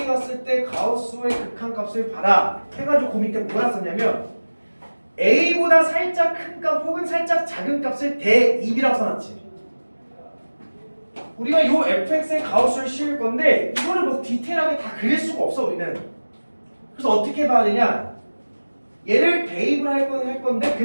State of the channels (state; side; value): inverted; both; correlation -1.00